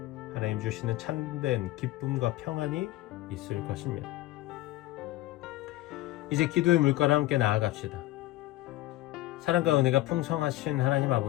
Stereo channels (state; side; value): quieter; right; 16.8 dB